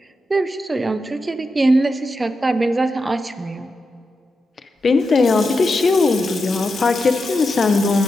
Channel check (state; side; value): normal; both; correlation 0.88